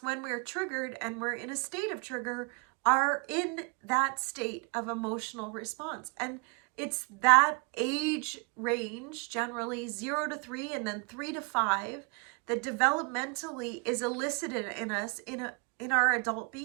when we're triggered and we're in a state of trigger, are in that state of emotional response. And it's that age range, generally 0 to 3 and then 3 to 5, that developmentally is elicited in us in our adult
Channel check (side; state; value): left; quieter; 33.9 dB